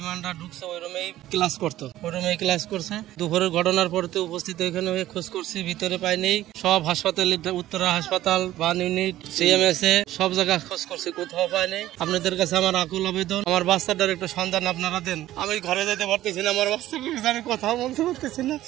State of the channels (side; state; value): left; quieter; 14.4 dB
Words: ঢুকছে ওই রুমেই ক্লাস করতো, ওই রুমেই ক্লাস করছে। দুপুরের ঘটনার পরতে উপস্থিত এখানে হয়ে খোঁজ করছি, ভিতরে পাইনি। সব হাসপাতালে, উত্তরা হাসপাতাল, বান ইউনিট, সিএমএসএ সব জায়গায় খোঁজ করছি, কোথাও পাইনি। আপনাদের কাছে আমার আকুল আবেদন, আমার বাচ্চাটার একটু সন্ধান আপনারা দেন। আমি ঘরে যেতে পারতেছি না, আমার বাচ্চাকে আমি কথা বলতে পারতেছি না।